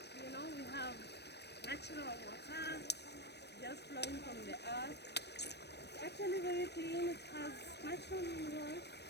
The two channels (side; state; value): right; late; 0.49 ms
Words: You know, we have natural water just flowing from the earth. It's actually very clean. It has natural minerals,